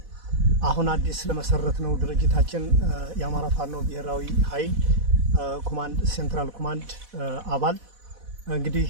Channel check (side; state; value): left; late; 4.1 ms